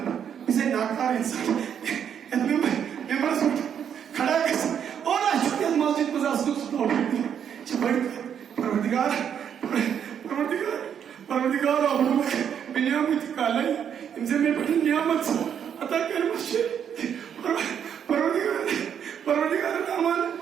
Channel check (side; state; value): left; quieter; 8.4 dB